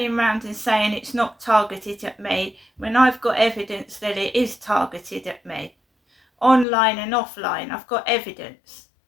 around and saying it's not targeted at me when I've got evidence that it is targeted at me. Online and offline, I've got evidence.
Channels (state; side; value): drops out; right; at 6.7 s